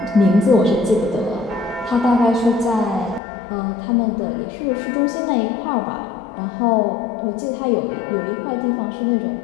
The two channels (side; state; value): right; drops out; at 3.2 s